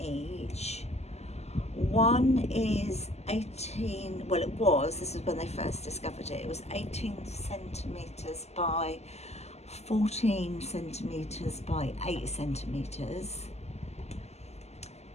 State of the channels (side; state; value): right; late; 0.31 ms